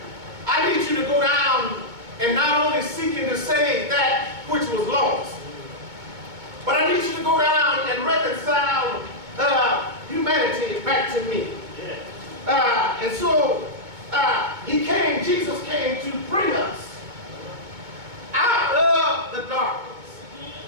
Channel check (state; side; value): late; left; 2.2 ms